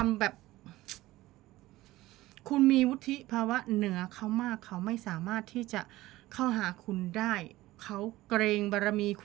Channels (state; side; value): quieter; left; 17.4 dB